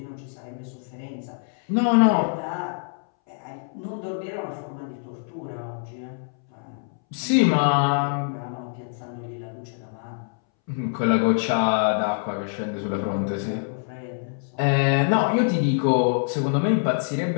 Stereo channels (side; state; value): right; silent; 62 dB below the other